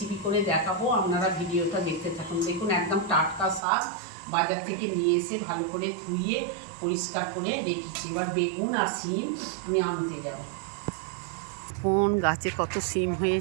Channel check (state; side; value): drops out; left; at 3.6 s